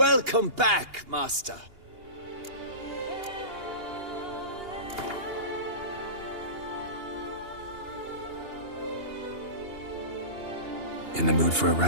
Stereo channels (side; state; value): left; late; 2.8 ms